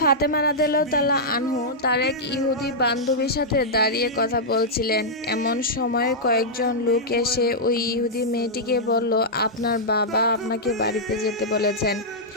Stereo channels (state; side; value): normal; both; correlation -0.09